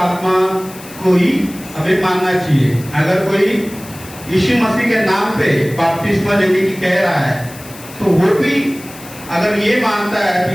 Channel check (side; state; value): left; noise; hiss, 18 dB below the sound